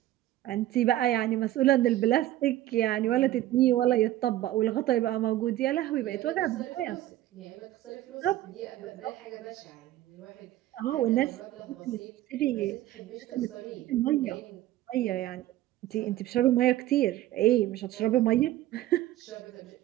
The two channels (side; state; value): left; quieter; 14.5 dB